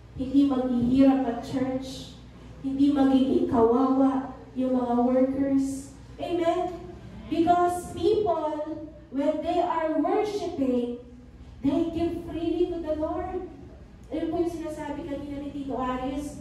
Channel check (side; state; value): both; identical; correlation 1.00